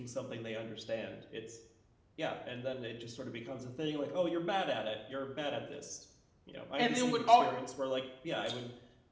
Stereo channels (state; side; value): identical; both; correlation 1.00